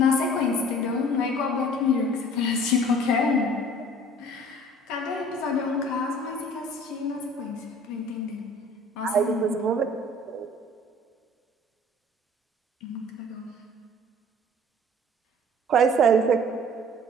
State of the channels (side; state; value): both; normal; correlation 0.49